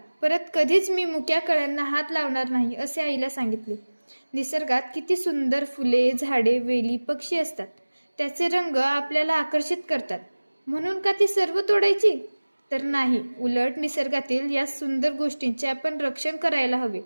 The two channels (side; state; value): both; inverted; correlation -1.00